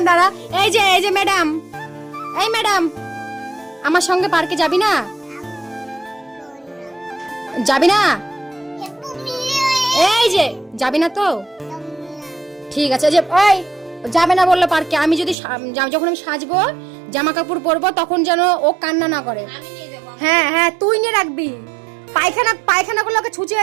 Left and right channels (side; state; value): left; drops out; at 15.4 s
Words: দাঁড়া। এই যে ম্যাডাম, এই ম্যাডাম, আমার সঙ্গে পার্কে যাবি না? যাবি না? এই যে যাবি না তো? ঠিক আছে, যে ওই যাবে না বললো পার্কে। আমি যদি যখন আমি সাজবো, জামা কাপড় পরবো, তখন যেন ও কান্না না করে। আমি নিয়ে যাবো। হ্যাঁ হ্যাঁ, তুই নিয়ে রাখবি। পায়খানা করলে ওকে